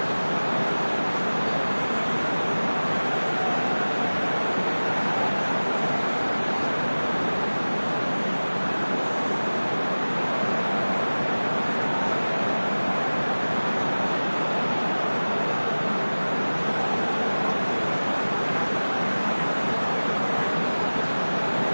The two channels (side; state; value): both; inverted; correlation -1.00